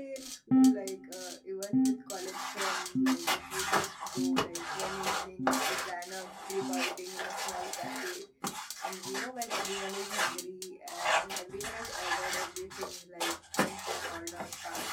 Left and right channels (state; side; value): identical; both; correlation 1.00